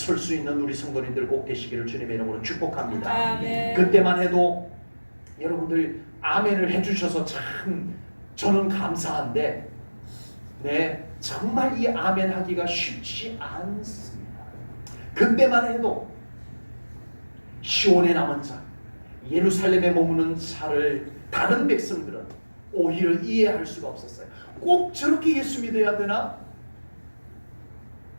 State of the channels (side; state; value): both; inverted; correlation -1.00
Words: 수 있는 우리 성도님들 꼭 되시기를 주님의 이름으로 축복합니다. 아멘. 그때만 해도 여러분들 아멘을 해주셔서 참 저는 감사한데, 네, 정말 이 아멘 하기가 쉽지 않습니다. 그때만 해도 시온에 남은 자, 예루살렘에 머무는 자를 다른 백성들은 오히려 이해할 수가 없었어요. 꼭 저렇게 예수 믿어야 되나?